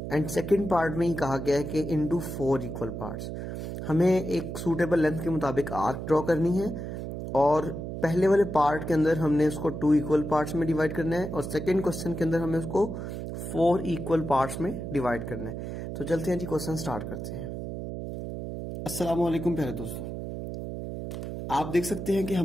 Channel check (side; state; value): right; noise; hum, 6 dB below the sound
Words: and second part में ही कहा गया है कि इनटू 4 इक्वल पार्ट्स। हमें एक सूटेबल लेंथ के मुताबिक आर्क ड्रॉ करनी है और पहले वाले पार्ट के अंदर हमने उसको 2 इक्वल पार्ट्स में डिवाइड करना है और सेकेंड क्वेश्चन के अंदर हमें उसको 4 इक्वल पार्ट्स में डिवाइड करना है। तो चलते हैं जी, क्वेश्चन स्टार्ट करते हैं। अस्सलाम वालेकुम प्यारे दोस्तों, आप देख सकते हैं कि